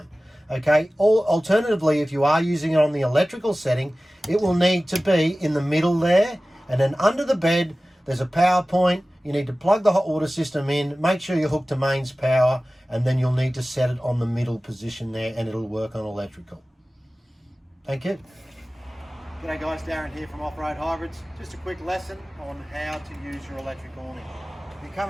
Okay, alternatively, if you are using it on the electrical setting, it will need to be in the middle there, and then under the bed, there's a power point. You need to plug the hot water system in, make sure you're hooked to mains power, and then you'll need to set it on the middle position there and it'll work on electrical. Thank you. G'day guys, Darren here from Offroad Hybrids. Just a quick lesson on how to use your electric awning. You come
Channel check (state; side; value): normal; both; correlation 0.97